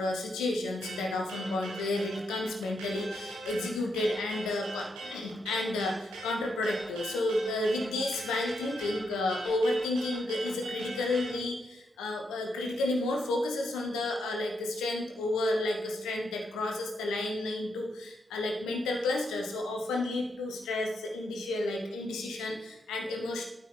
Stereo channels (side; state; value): both; normal; correlation 0.80